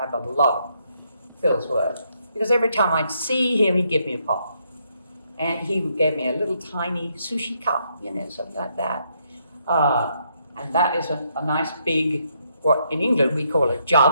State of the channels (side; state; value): both; inverted; correlation -0.75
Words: have a lot of Phil's work, because every time I'd see him, he'd give me a pot. And he gave me a little tiny sushi cup, something like that. And that is a nice big, what in England we call a